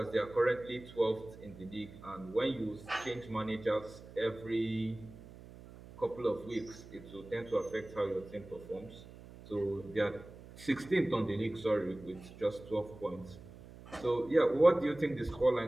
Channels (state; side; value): noise; right; hum, 17 dB below the sound